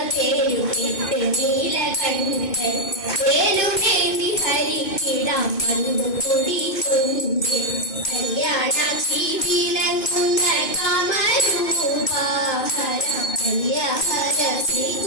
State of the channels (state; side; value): late; right; 2.5 ms